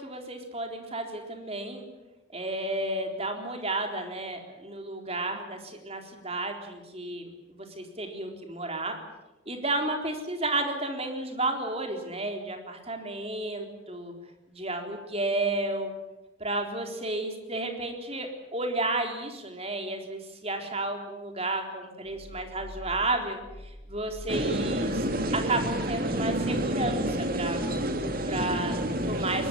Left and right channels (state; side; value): normal; both; correlation 0.08